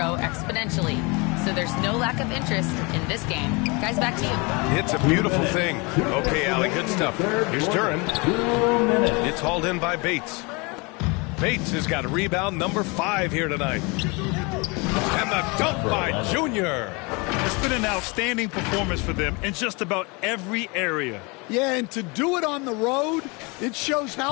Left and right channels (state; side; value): quieter; right; 28.5 dB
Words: exponentially. So there's no lack of interest in this game. Guys, back to you. It's a beautiful thing. Okay, Allie, good stuff. Here's Duran. It's hauled in by Bates. Bates has got a rebound number 5 here tonight. And the dunk by Junior. It's been an outstanding performance for them in just about every area. Yeah, and to do it on the road, it shows